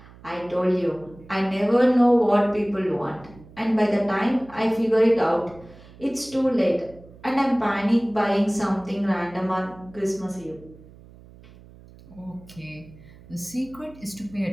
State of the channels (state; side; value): noise; right; hum, 22 dB below the sound